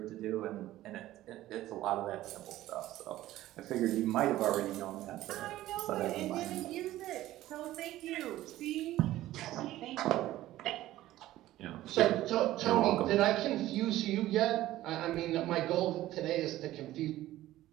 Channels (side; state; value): left; quieter; 15.1 dB